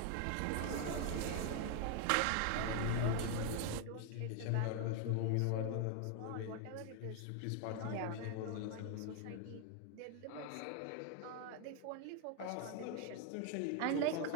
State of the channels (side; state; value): both; different; correlation 0.01